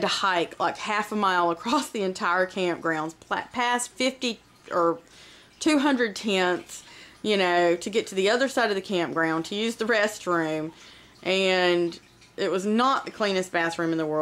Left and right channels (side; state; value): both; identical; correlation 1.00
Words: to hike like half a mile across the entire campgrounds, past 50 or 200 tents, you know, to get to the other side of the campground to use the restroom. And it was not the cleanest bathroom in the